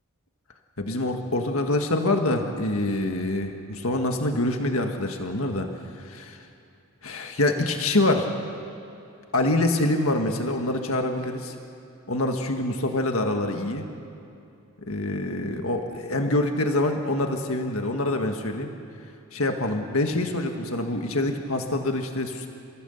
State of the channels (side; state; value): both; normal; correlation 0.23